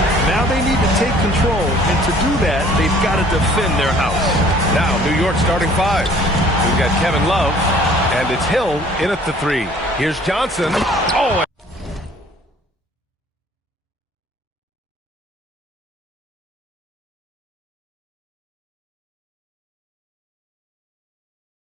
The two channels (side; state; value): both; normal; correlation 0.54